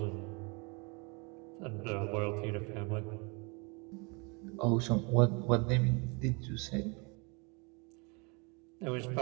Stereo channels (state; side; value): quieter; left; 30.8 dB